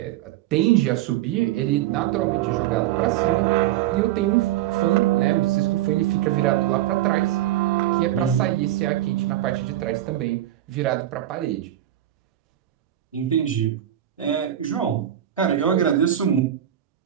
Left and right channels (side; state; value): left; quieter; 12.6 dB